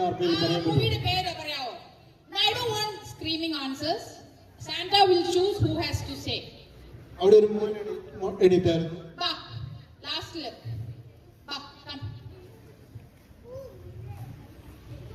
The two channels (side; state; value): both; identical; correlation 1.00